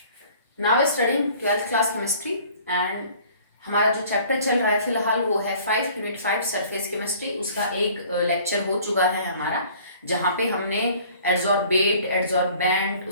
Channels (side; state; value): both; inverted; correlation -0.52